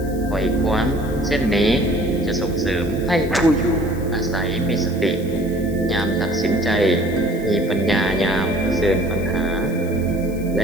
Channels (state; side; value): noise; left; hiss, 21 dB below the sound